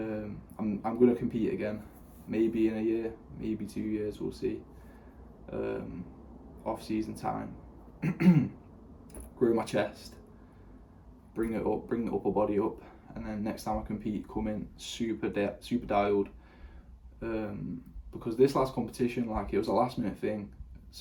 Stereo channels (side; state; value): both; identical; correlation 1.00